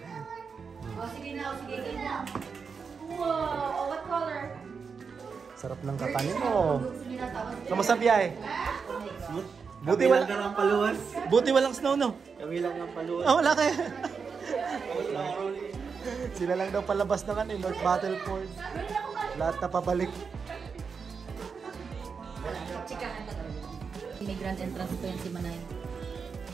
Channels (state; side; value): quieter; left; 5.6 dB